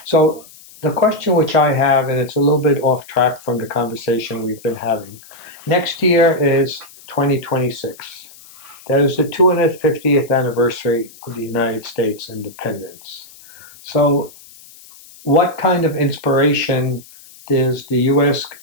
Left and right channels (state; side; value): noise; left; hiss, 22 dB below the sound